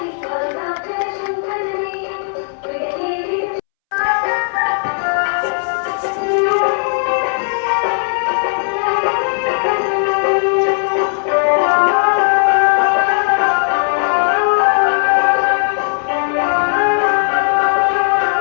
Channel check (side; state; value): right; silent; 69 dB below the other